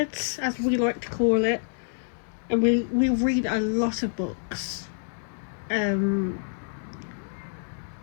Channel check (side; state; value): right; silent; digital silence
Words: as we like to call it, and we read a lot of books. I